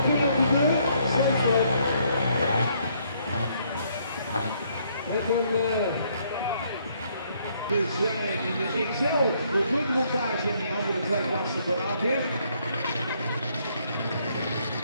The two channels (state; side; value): inverted; both; correlation -0.69